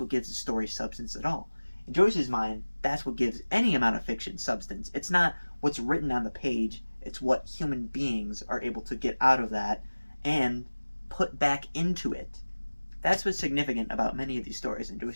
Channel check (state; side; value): inverted; both; correlation -1.00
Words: gives the story substance at all. In Joyce's mind, that's what gives any amount of fiction substance. It's not what's written on the page, it's what human beings are able to get out of that and put back into it. That's what's significant about many of these stories in